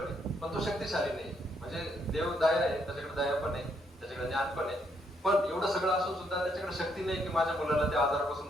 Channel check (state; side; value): normal; both; correlation 0.74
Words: आहे, पण तो शक्तिशाली नाही. म्हणजे देव दया आहे, त्याच्याकडे दया पण आहे, त्याच्याकडे ज्ञान पण आहे, पण एवढं सगळं असून सुद्धा त्याच्याकडे शक्ती नाही की माझ्या मुलाला त्या आजारापासून